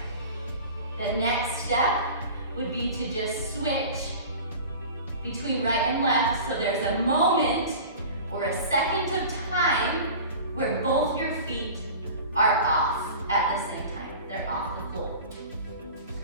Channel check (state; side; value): inverted; both; correlation -0.37